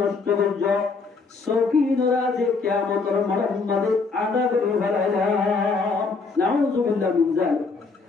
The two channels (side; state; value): right; quieter; 4.4 dB